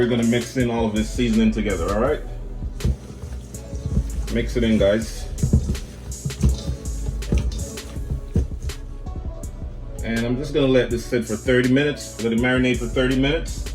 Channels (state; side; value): identical; both; correlation 1.00